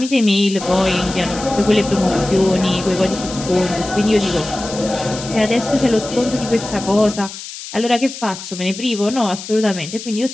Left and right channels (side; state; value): left; noise; hiss, 11 dB below the sound